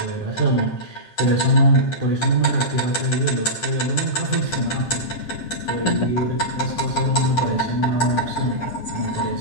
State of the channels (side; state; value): right; late; 9.8 ms